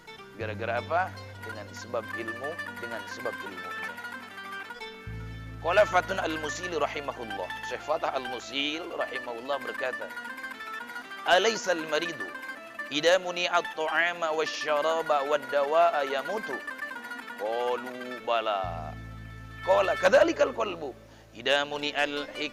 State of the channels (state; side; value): identical; both; correlation 1.00